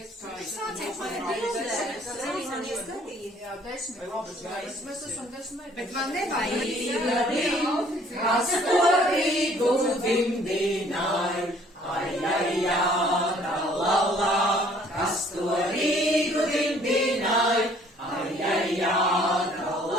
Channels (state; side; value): normal; both; correlation 0.58